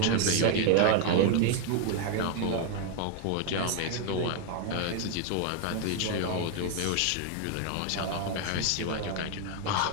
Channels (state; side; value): different; both; correlation 0.01